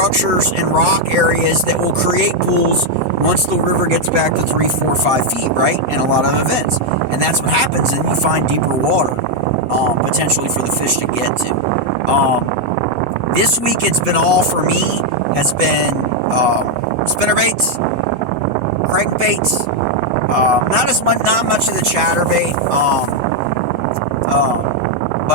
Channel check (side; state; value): left; late; 8.2 ms